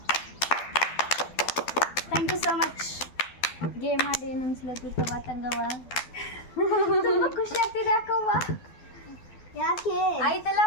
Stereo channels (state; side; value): late; right; 12 ms